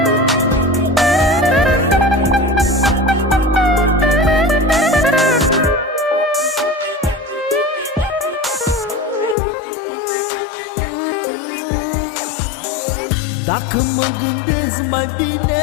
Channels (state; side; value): drops out; right; at 9.3 s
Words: Dacă mă gândesc mai